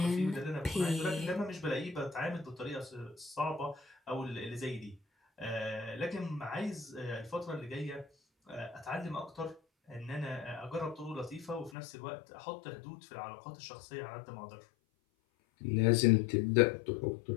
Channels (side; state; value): right; drops out; at 11.7 s